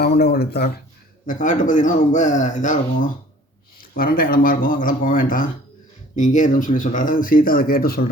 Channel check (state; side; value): normal; both; correlation 0.51